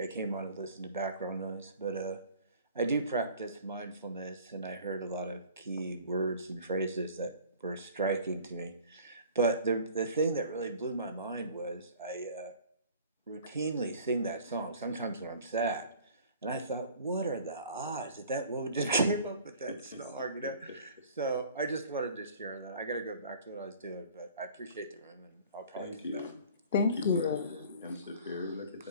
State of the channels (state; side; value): inverted; both; correlation -0.48